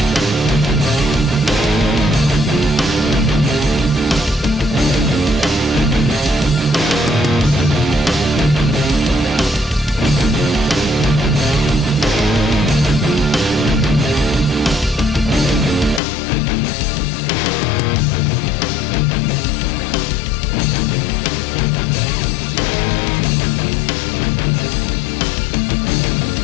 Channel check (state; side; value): drops out; right; at 16.0 s